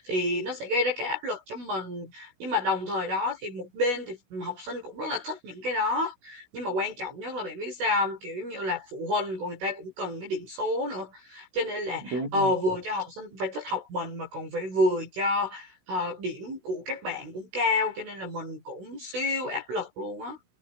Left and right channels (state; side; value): late; left; 16 ms